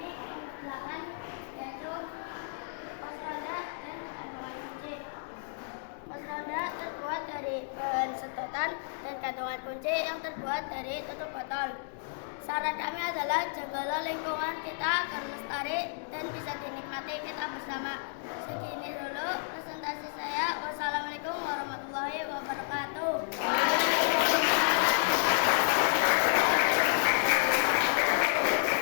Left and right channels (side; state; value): right; silent; digital silence